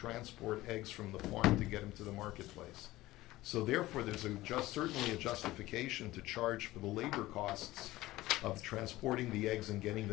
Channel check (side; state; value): right; quieter; 17.4 dB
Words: eggs from the farm to get them to the marketplace. So therefore, there's certainly a justification to charge for the labor costs of transporting the eggs and getting